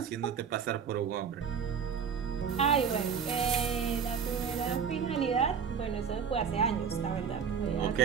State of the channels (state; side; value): quieter; left; 6.9 dB